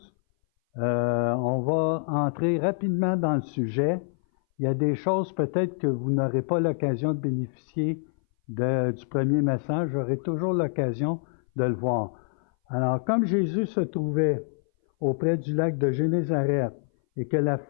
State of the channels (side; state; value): right; silent; 58 dB below the other